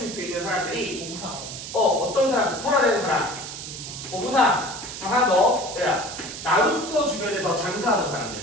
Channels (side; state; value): right; noise; hiss, 9 dB below the sound